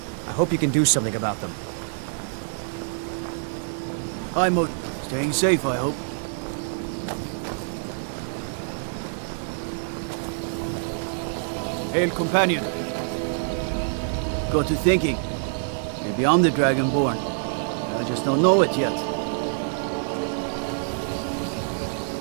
I hope you can do something about them. I'm staying safe, I hope. Hail, companion. Got to thinking. Maybe I'm the Dragonborn. I just don't know it yet.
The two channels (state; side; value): silent; left; 61 dB below the other